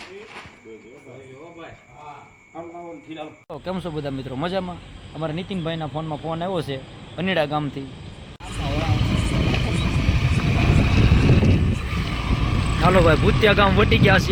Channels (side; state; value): both; identical; correlation 1.00